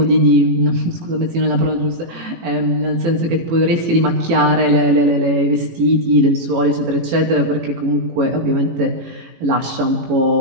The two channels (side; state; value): left; late; 18 ms